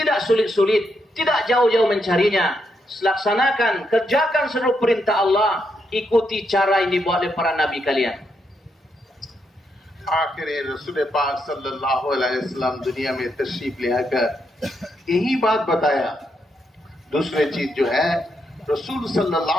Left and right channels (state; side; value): normal; both; correlation 0.80